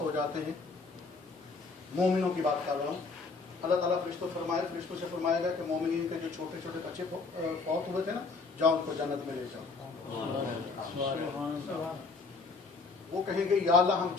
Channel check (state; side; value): quieter; right; 4.2 dB